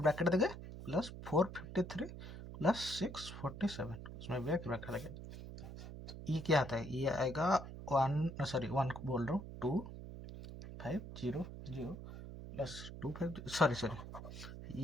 देंगे, प्लस 453 प्लस 647, उसमें भी एक ब्रैकेट देंगे। ये क्या आता है, ये आएगा 1 सॉरी 1 बोल रहा हूँ 2500 प्लस 25 सॉरी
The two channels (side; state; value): right; noise; hum, 11 dB below the sound